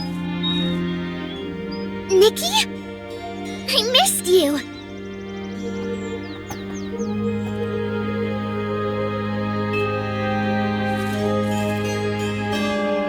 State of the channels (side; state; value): both; identical; correlation 1.00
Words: Nikki? I missed you.